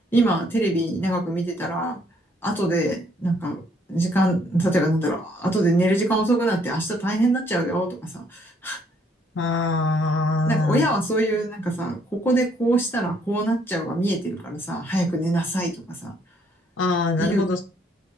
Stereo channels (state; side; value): normal; both; correlation 0.67